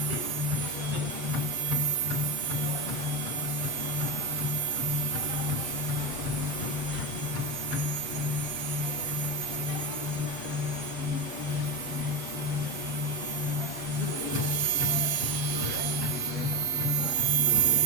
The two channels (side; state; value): left; late; 7.6 ms